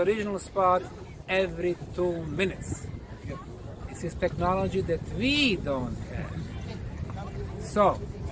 spot every 2 minutes. This is technology that we don't have. So,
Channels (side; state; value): both; identical; correlation 1.00